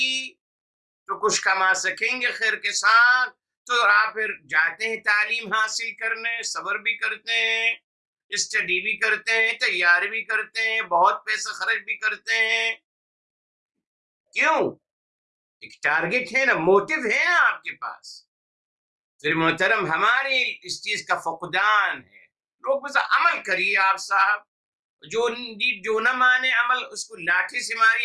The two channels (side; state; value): both; identical; correlation 1.00